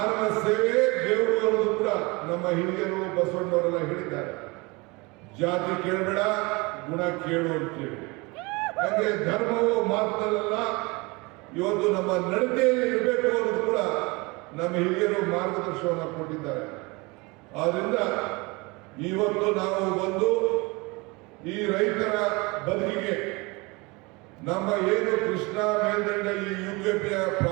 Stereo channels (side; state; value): left; quieter; 25.9 dB